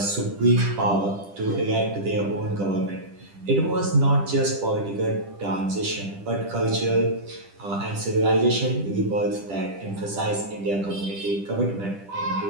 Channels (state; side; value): late; left; 10 ms